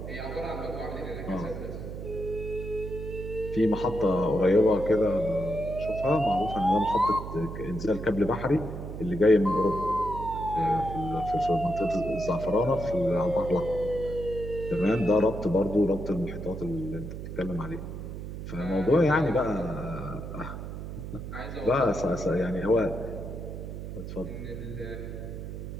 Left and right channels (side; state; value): right; noise; hum, 8 dB below the sound